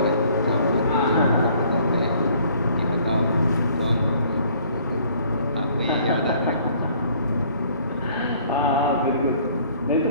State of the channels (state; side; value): inverted; both; correlation -0.58